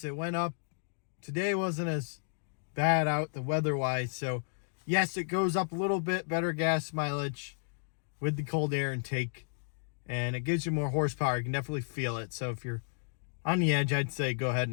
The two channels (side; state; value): right; silent; digital silence